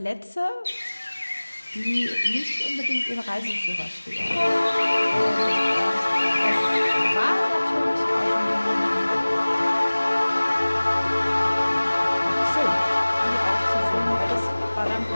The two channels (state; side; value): inverted; both; correlation -1.00